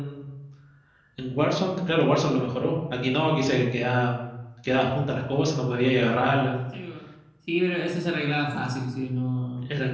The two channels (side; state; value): both; identical; correlation 1.00